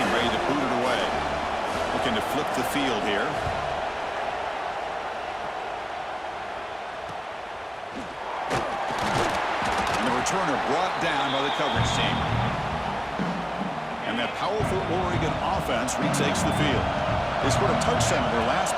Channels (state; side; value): identical; both; correlation 1.00